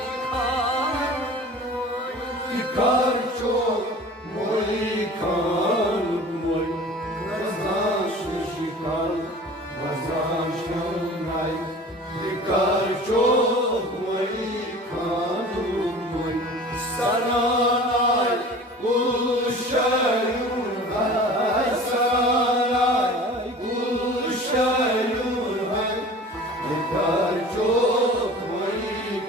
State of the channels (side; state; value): both; normal; correlation 0.41